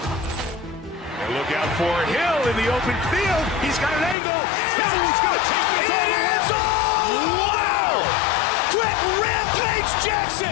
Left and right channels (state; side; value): drops out; right; at 4.2 s